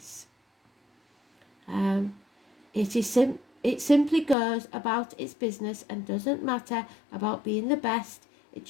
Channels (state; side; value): drops out; right; at 4.4 s